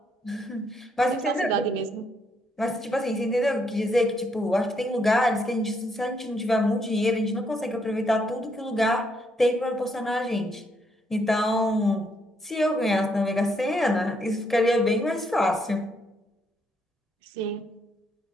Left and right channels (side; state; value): both; normal; correlation 0.74